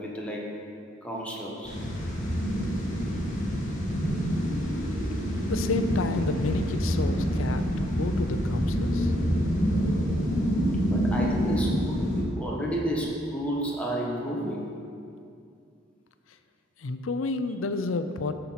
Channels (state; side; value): normal; both; correlation 0.71